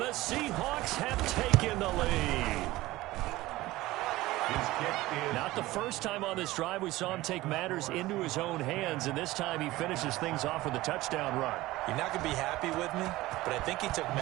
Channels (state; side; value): quieter; left; 18.0 dB